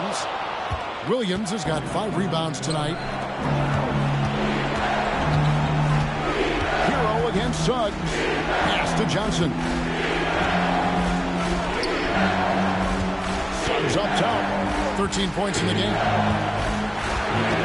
Williams has got 5 rebounds tonight. Hero against Suggs. Pass to Johnson. Suggs up top. 13 points in the game.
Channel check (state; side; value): identical; both; correlation 1.00